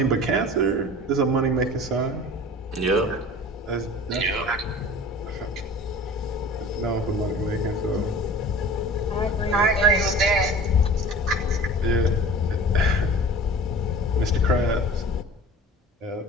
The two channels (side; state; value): both; normal; correlation 0.41